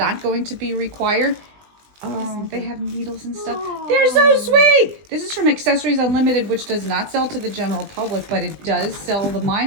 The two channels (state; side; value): late; left; 20 ms